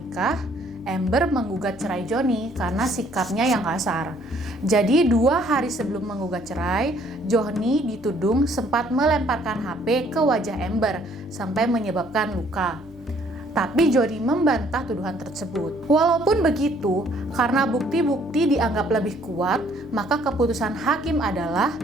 Amber menggugat cerai Johnny karena sikapnya yang kasar. Jadi 2 hari sebelum menggugat cerai, Johnny dituding sempat melemparkan HP ke wajah Amber sampai menyebabkan luka. Tapi Johnny membantah tuduhan tersebut. Walaupun begitu, karena bukti-bukti dianggap lebih kuat, maka keputusan hakim adalah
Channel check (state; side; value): normal; both; correlation 0.62